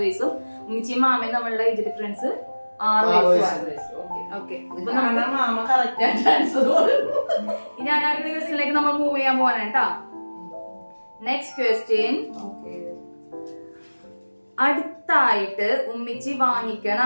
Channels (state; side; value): inverted; both; correlation -1.00